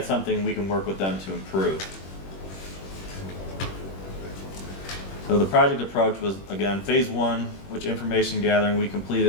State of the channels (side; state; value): right; late; 21 ms